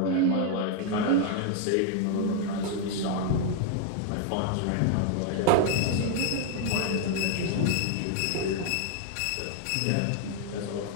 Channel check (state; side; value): different; both; correlation 0.00